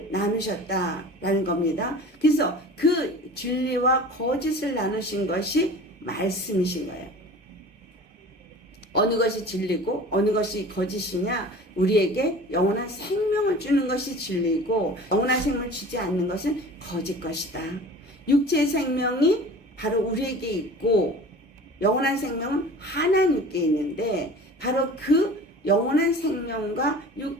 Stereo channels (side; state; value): both; normal; correlation 0.41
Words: 나누셨다라는 겁니다. 그래서 그 진리와 거짓을 나누신 것이 말씀이신 거예요. 어느 것이 진리고 어느 것이 거짓이냐? 우리에게 영원한 생명을 주는 것이 진리고 영원한 생명을 주지 않는 것은 거짓 것이다. 육체의 생명이 바로 우리에게 있고 영원한 생명은 하나님께 있는데 바로 그 영원한 생명과